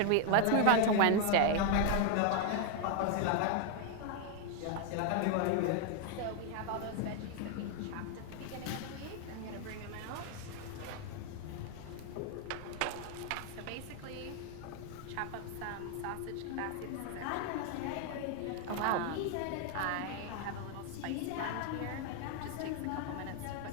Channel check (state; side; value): different; both; correlation 0.00